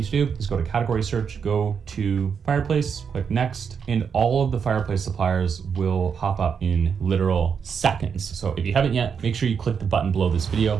to do is go to category search, go to fireplace, click next, and all of the fireplace suppliers will pop up in literal seconds. So if you haven't yet, make sure you click the button below this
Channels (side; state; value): left; quieter; 6.6 dB